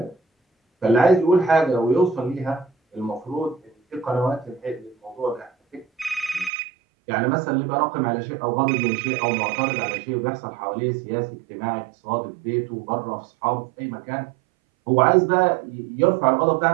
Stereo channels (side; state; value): left; drops out; at 6.5 s